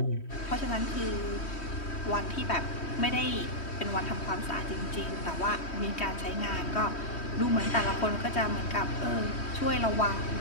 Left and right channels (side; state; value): right; late; 3.1 ms